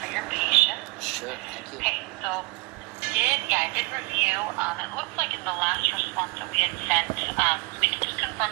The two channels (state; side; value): quieter; left; 25.3 dB